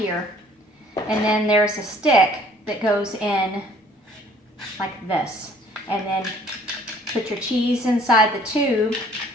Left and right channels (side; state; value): both; normal; correlation 0.57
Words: And then there's a stick that goes in like this. And then put your cheese inside the tube,